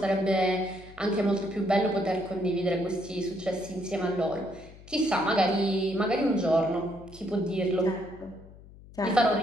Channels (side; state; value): left; noise; hum, 20 dB below the sound